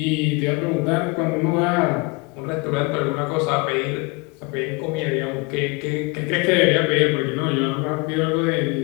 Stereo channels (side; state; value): right; quieter; 28.2 dB